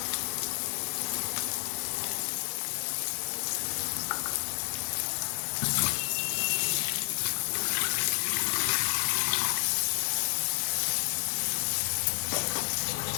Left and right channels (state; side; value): silent; right; digital silence